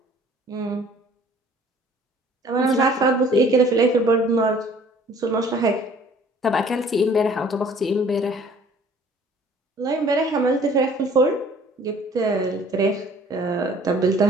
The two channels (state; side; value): normal; both; correlation 0.54